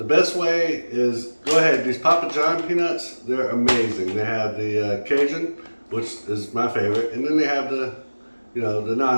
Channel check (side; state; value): both; inverted; correlation -1.00